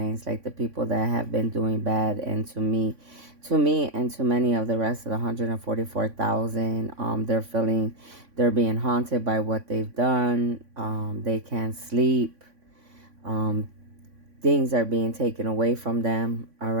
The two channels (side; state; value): left; late; 3.5 ms